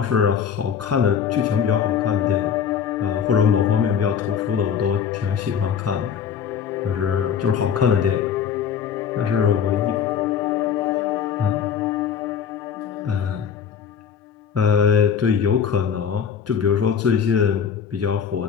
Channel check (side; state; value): right; quieter; 7.6 dB